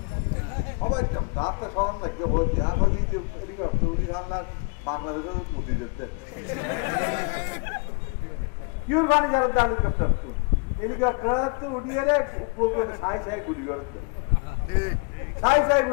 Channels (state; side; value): quieter; right; 32.9 dB